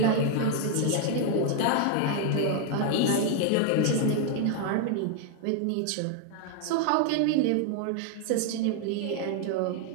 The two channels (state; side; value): different; both; correlation 0.00